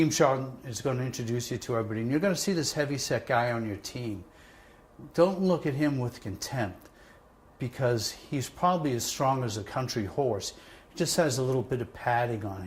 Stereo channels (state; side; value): identical; both; correlation 1.00